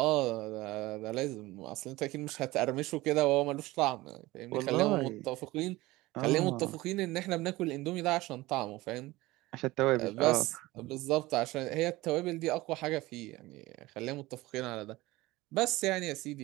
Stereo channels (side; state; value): left; quieter; 19.4 dB